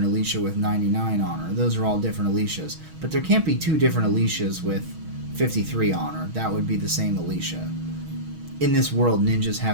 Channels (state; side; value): late; left; 6.3 ms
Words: Alicia with 99 honor. Those are all different Alicias. But there can't be two different Alicias with 53 honor. That would be the same Alicia. In this world, ninjas